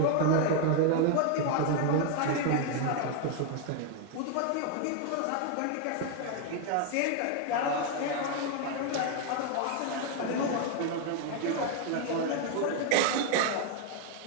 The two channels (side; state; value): both; different; correlation 0.01